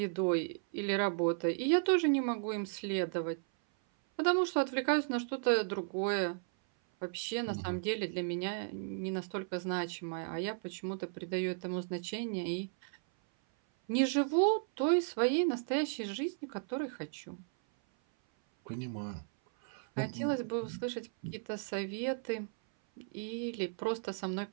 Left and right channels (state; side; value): silent; left; 54 dB below the other